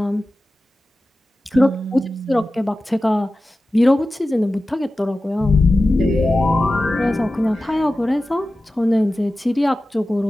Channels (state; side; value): normal; both; correlation 0.95